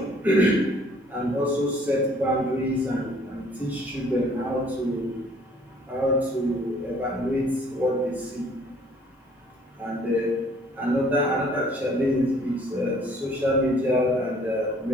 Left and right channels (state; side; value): normal; both; correlation 0.58